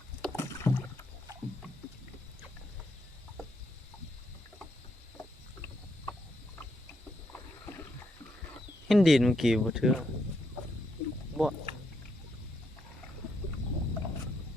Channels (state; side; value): normal; both; correlation 0.78